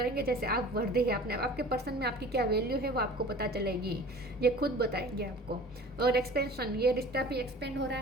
जैसे आप वर्दी है अपने आपके पर्सन में, आपकी क्या वैल्यू है वो आपको पता चलेगी, ये खुद बताएंगे आपको। और एक्सपेंशन, ये रिश्ता भी एक्सपेंड हो रहा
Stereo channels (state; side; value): normal; both; correlation 0.43